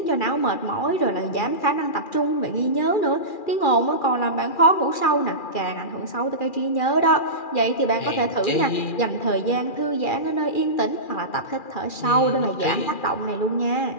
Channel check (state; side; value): late; right; 2.4 ms